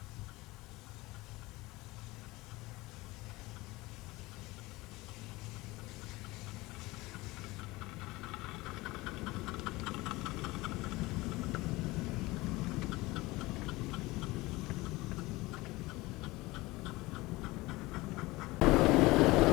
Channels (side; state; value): right; quieter; 20.9 dB